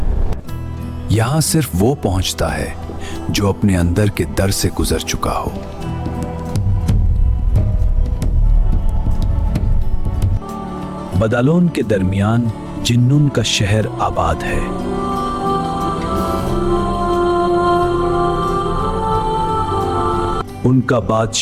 यहां सिर्फ वो पहुंचता है जो अपने अंदर के दर से गुजर चुका हो। बदालोन के दरमियान जिन्नुन का शहर आबाद है। उनका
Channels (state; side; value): identical; both; correlation 1.00